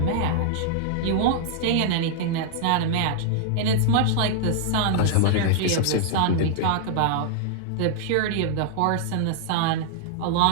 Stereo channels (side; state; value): both; different; correlation -0.01